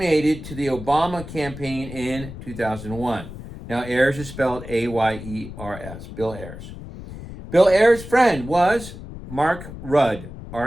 to the Obama campaign in 2001. Now, Ayers is spelled Ayers, Bill Ayers. Bill Ayers' friend was Mark Rudd,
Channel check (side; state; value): left; noise; rumble, 12 dB below the sound